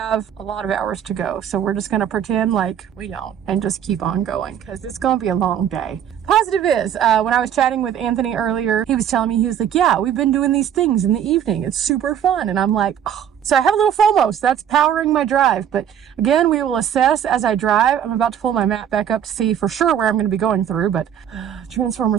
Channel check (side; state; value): left; quieter; 9.4 dB